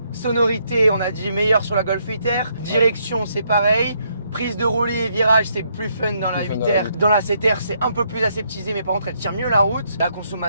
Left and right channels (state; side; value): inverted; both; correlation -0.74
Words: Sonorité, on a dit meilleur sur la Golf 8R. Direction, c'est pareil. Prise de roulis et virage, c'est plus fun dans la Plus fun 8R. Dans la 7R, c'est un peu plus aseptisé, mais par contre, elle tire mieux la route. La